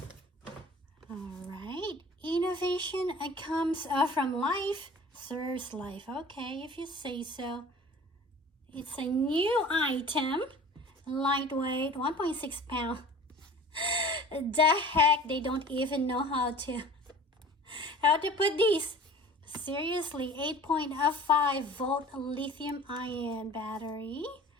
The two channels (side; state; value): both; normal; correlation 0.43